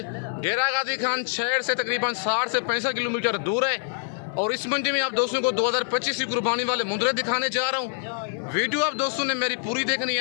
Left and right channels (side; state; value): right; silent; 59 dB below the other